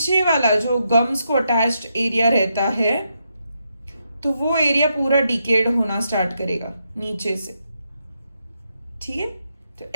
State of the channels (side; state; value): both; inverted; correlation -0.81